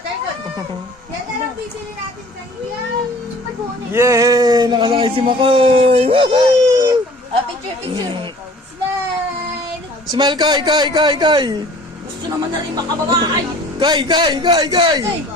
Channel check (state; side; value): normal; both; correlation 0.49